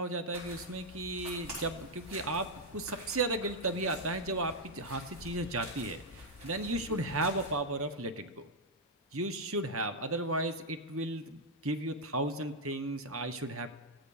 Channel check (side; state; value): both; normal; correlation -0.01